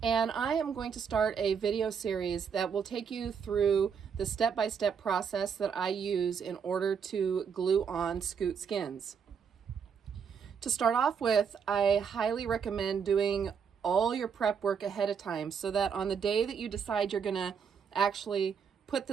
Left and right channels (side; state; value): left; quieter; 6.8 dB